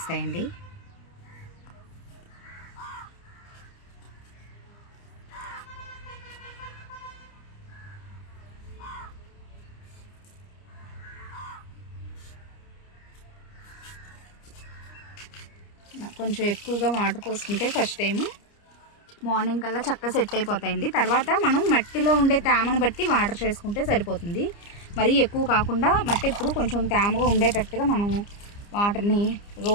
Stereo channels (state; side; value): late; right; 29 ms